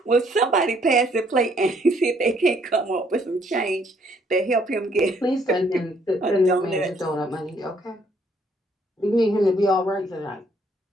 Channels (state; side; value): normal; both; correlation 0.66